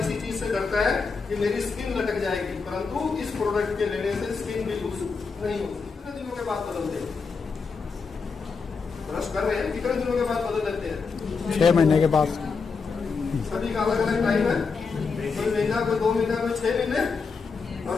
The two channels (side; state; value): right; quieter; 4.9 dB